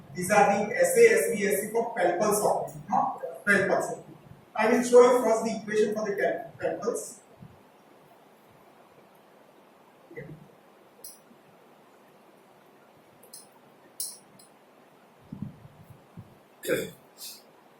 these are the SASBSC for 12 pulse operation, not 12 pulse. I will show you first the equation for the 12 pulse.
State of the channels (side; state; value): both; identical; correlation 1.00